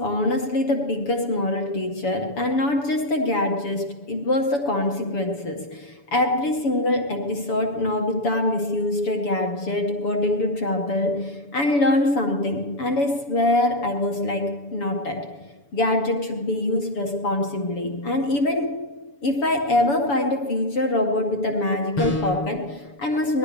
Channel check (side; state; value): right; late; 7.0 ms